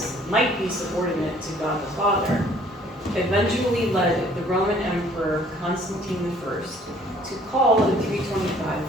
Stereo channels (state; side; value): normal; both; correlation 0.57